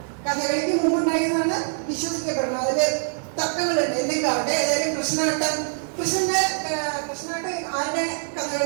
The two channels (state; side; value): silent; left; 63 dB below the other